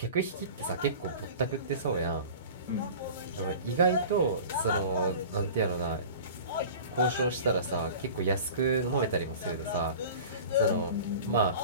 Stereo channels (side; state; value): both; inverted; correlation -0.39